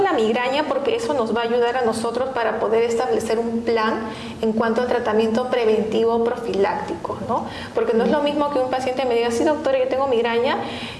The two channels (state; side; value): identical; both; correlation 1.00